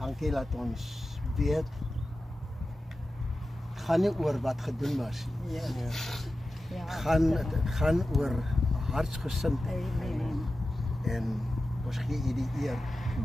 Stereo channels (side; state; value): both; normal; correlation 0.93